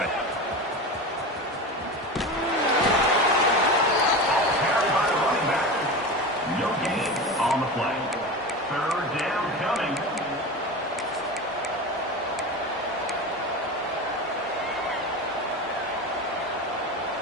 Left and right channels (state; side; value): normal; both; correlation 0.27